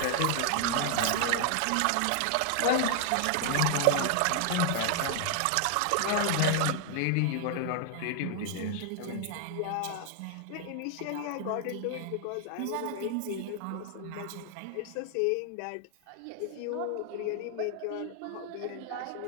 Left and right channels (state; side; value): different; both; correlation 0.00